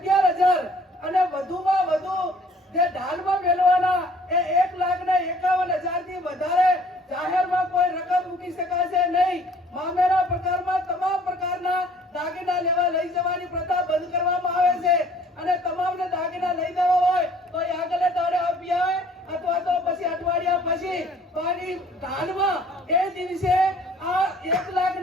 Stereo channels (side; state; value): both; normal; correlation 0.56